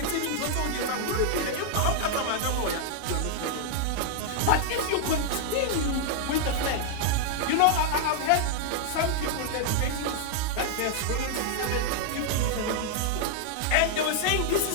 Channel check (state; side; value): different; both; correlation 0.00